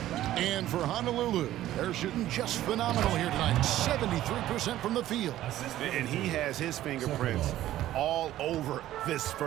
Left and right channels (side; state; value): left; quieter; 13.8 dB